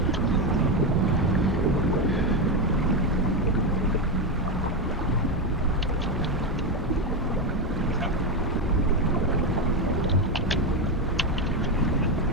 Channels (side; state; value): both; normal; correlation 0.10